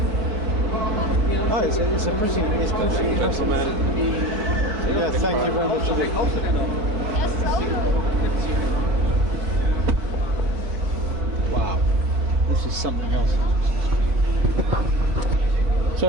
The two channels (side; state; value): left; late; 4.7 ms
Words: Oh, it's pretty impressive. Gentlemen. Yeah, thank you very much indeed. Wow, this is something else. So